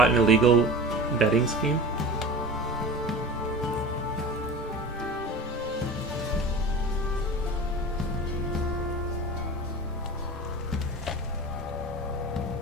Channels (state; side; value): normal; both; correlation 0.33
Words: in a illegal betting scheme.